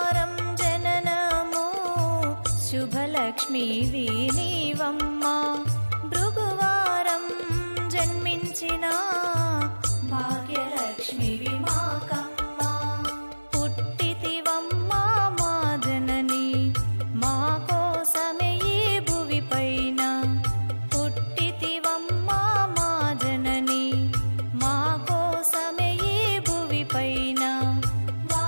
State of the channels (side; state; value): both; inverted; correlation -1.00